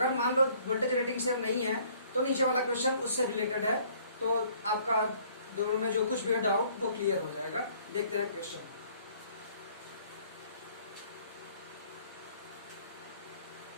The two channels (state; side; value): inverted; both; correlation -0.59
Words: मान लो वोल्टेज रेटिंग सेम नहीं है तो नीचे वाला क्वेश्चन उससे रिलेटेड है, तो आपका दोनों में जो कुछ भी डाउट वो क्लियर हो जाएगा। देखते हैं क्वेश्चन।